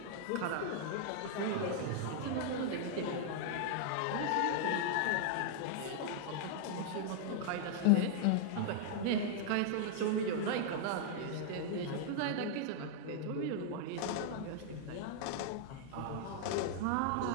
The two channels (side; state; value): both; different; correlation -0.01